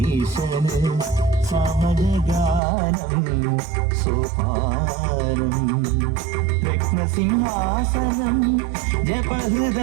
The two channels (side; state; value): left; drops out; at 2.6 s